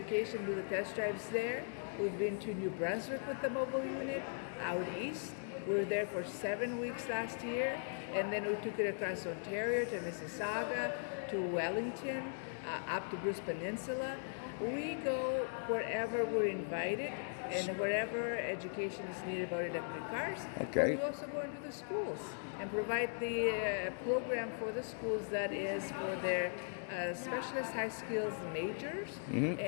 do the test drives there. We've been to New Brunswick with the mobile unit, out east. We were there for 7 weeks last year. And then we took it across Ontario to Mississauga, to Wellington, up to Bruce Peninsula. We go wherever we're invited and wherever education is needed about electric cars. Okay. But we also go into the schools and provide the program for the schools that is for their specialist high skills majors.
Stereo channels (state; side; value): silent; right; digital silence